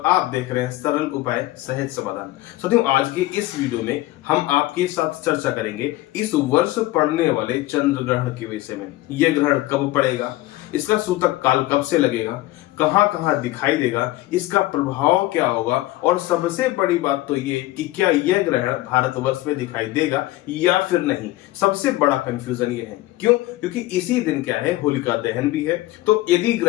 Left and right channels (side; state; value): right; quieter; 17.5 dB